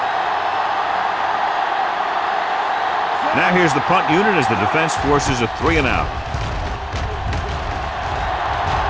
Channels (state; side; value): identical; both; correlation 1.00